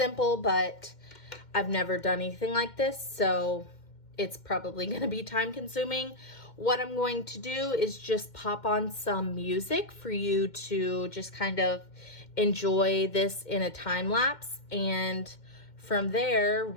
but I've never done anything like this, so it's probably going to be time consuming. What I'm going to do is just pop on some music for you to just kind of enjoy this in a time lapse, and from there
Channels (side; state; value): right; late; 2.1 ms